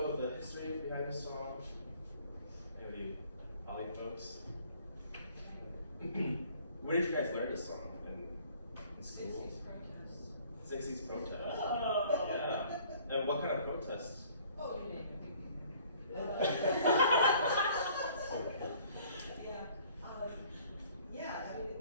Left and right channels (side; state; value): both; inverted; correlation -0.56